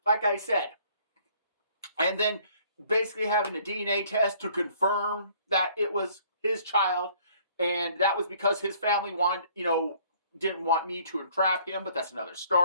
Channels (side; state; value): both; inverted; correlation -0.59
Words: like I said, and then basically having a DNA test to confirm that it was his child, and that was because his family didn't want me to entrap him, but that's another